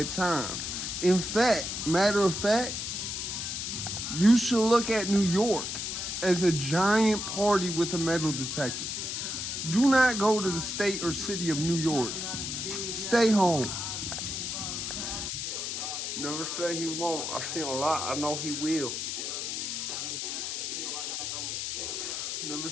time. In fact, matter of fact, you should look at New York as a giant party with a metal detector. Do not go to the state or city of New York. Stay home. Never say he won't. I've seen a lot. I know he will. Never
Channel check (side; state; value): left; noise; hiss, 3 dB below the sound